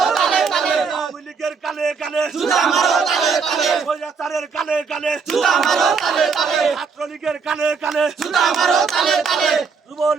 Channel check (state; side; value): quieter; left; 5.5 dB